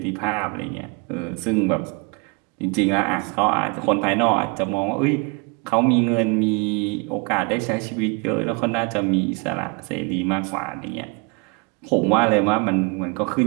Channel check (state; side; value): quieter; left; 30.9 dB